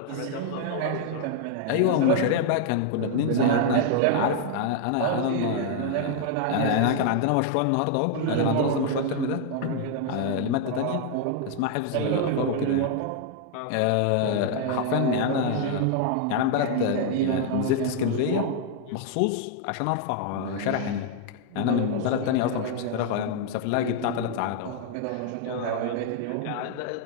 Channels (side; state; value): both; different; correlation 0.00